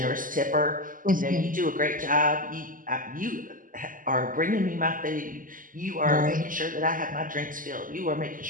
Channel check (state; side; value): late; left; 0.39 ms